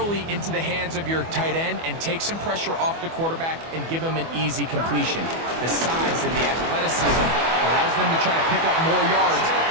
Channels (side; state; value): left; late; 24 ms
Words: into the hands of your tight end and take some pressure off the quarterback and give him an easy completion. The size and the athleticism allows them to try to pick up more yards,